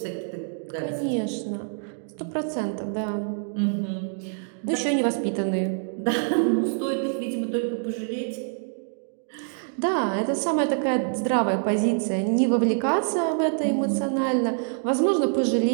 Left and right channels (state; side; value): silent; left; digital silence